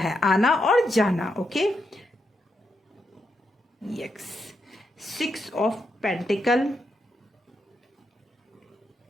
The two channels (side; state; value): both; normal; correlation 0.82